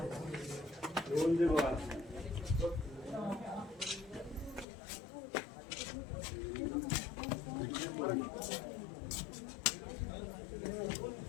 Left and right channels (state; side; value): drops out; right; at 4.7 s